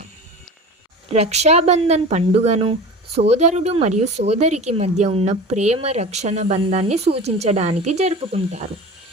రక్షాబంధన్ పండుగను సోదరుడు మరియు సోదరికి మధ్య ఉన్న ప్రేమ రక్షణ బంధాన్ని సూచించడానికి జరుపుకుంటారు.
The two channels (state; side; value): normal; both; correlation 0.34